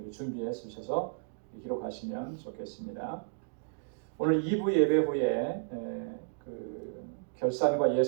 준비해 주셔서 기록하시면 좋겠습니다. 오늘 2부 예배 후에 그 결산과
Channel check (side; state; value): left; silent; digital silence